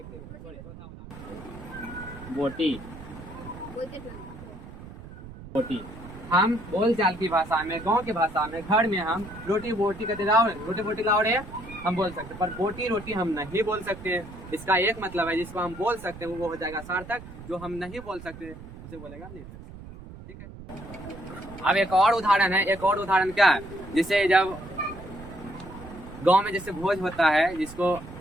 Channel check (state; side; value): noise; right; rumble, 15 dB below the sound